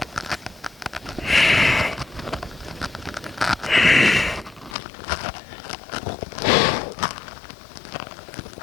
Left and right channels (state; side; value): drops out; right; at 4.8 s